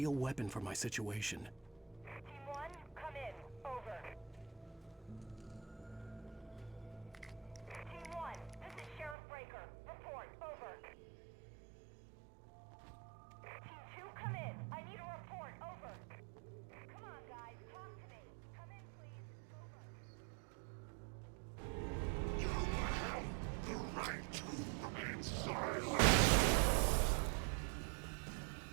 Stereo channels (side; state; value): left; drops out; at 9.2 s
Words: weapon for my situation. Team 1, come in. Over. Team 1, this is Sheriff Breaker. Report. Over. Team 2, come in. I need a report. Over. Come on, guys. Talk to me. Come in, please. Over. You have the right to remain silent.